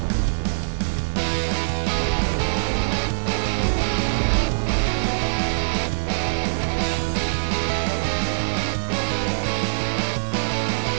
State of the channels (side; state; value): left; silent; digital silence